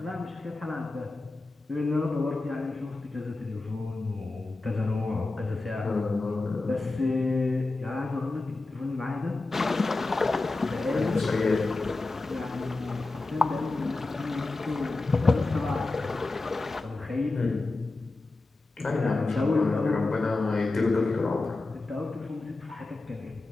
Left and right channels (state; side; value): quieter; right; 3.3 dB